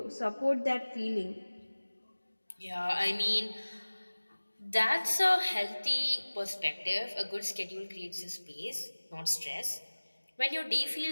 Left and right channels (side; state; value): both; inverted; correlation -1.00